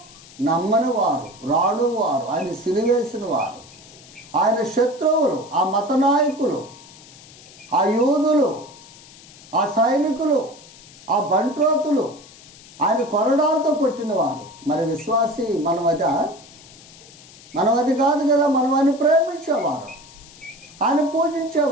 నమ్మని వారు, రాడు వారు, ఆయన సిలివేసిన వారు, ఆయన శత్రువులు, ఆ మత నాయకులు, ఆ యూదులు, ఆ సైనికులు, ఆ బంట్రోతులు, ఆయన కొరడాలతో కొట్టిన వారు. మరి విశ్వాసి మనం అది కాదు కదా. మనం ఆయన ప్రేమించేవారు, ఆయన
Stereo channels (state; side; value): noise; left; hiss, 21 dB below the sound